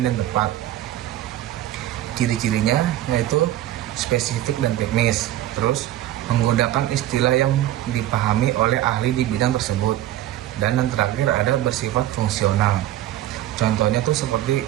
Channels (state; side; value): quieter; left; 13.6 dB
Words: dan tepat. Ciri-cirinya yaitu spesifik dan teknis. Terus menggunakan istilah yang dipahami oleh ahli di bidang tersebut. Dan yang terakhir ada bersifat fungsional. Contohnya tuh seperti